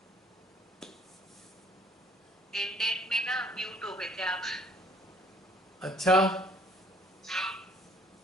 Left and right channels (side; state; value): both; normal; correlation 0.58